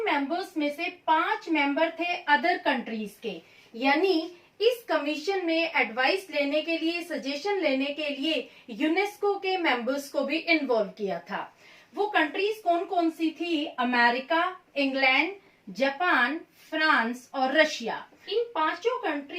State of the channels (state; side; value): identical; both; correlation 1.00